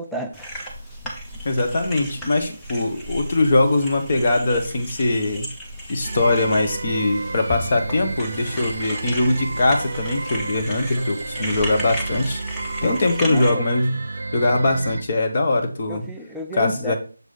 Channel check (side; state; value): both; inverted; correlation -0.86